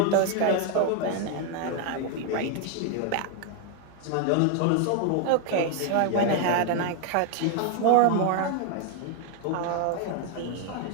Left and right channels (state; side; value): different; both; correlation 0.00